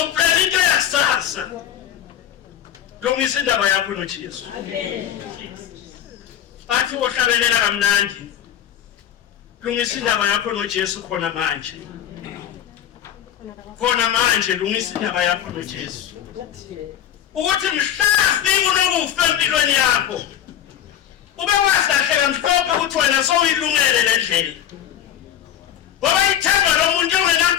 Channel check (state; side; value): quieter; right; 10.5 dB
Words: into yasasa lungisa indaba yakho noJesu bathi ohlabelela kamnandi lungisa indaba yakho noJesu khona manje lungisa indaba yakho noJesu ukuthi mhlafi unokufa empilweni yakho ube wahlahleka mhlophe ukuthi wena sowuyilungele le ndlela ngoba ithemba lomuntu